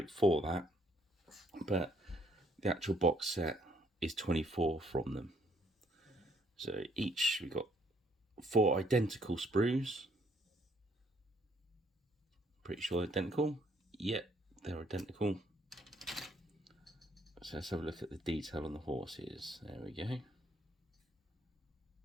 for that, but the actual box set is 24 from them. So each we got 4 identical sprues. Pretty sure identical. Yep, they're identical. So let's have a look at the detail on the horses. There we go.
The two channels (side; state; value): both; normal; correlation 0.68